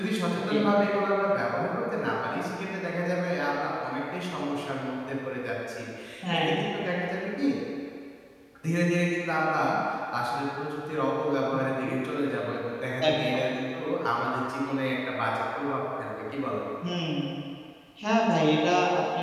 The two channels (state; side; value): identical; both; correlation 1.00